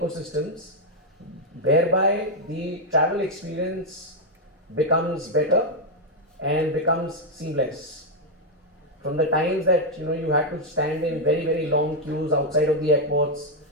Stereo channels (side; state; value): both; normal; correlation 0.00